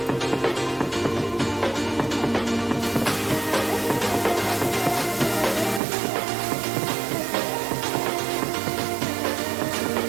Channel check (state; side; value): drops out; left; at 5.8 s